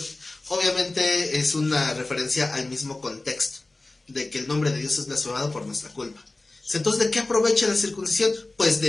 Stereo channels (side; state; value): right; quieter; 3.0 dB